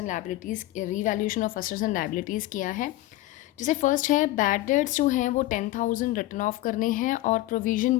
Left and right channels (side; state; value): right; quieter; 16.7 dB